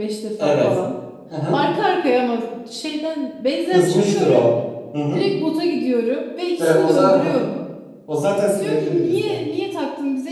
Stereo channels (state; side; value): identical; both; correlation 1.00